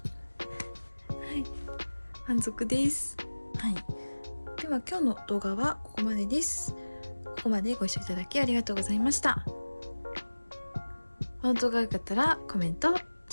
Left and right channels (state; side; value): inverted; both; correlation -1.00